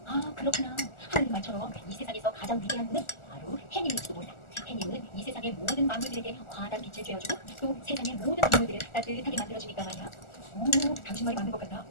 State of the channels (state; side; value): late; right; 1.4 ms